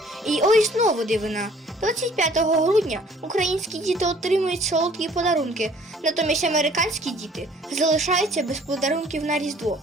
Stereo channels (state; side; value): normal; both; correlation 0.55